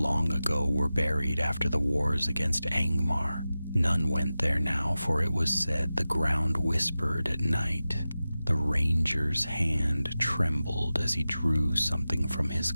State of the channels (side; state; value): both; inverted; correlation -0.94